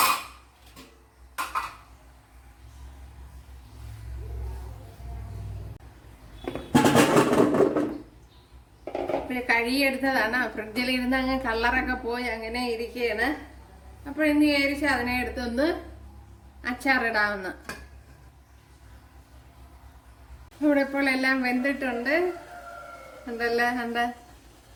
കഴുകിയെടുത്തതാണ്. ഫ്രിഡ്ജിൽ ഇരുന്ന് അങ്ങ് കളറൊക്കെ പോയി അങ്ങനെ ഇരിക്കുകയാണ്. അപ്പോൾ ഇന്ന് വിചാരിച്ച് അതിനെ എടുത്തൊന്ന് അച്ചാറിടാവുന്ന. ഇവിടെ ഇപ്പോൾ എല്ലാം വെന്തിട്ടുണ്ട്. കണ്ട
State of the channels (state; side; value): identical; both; correlation 1.00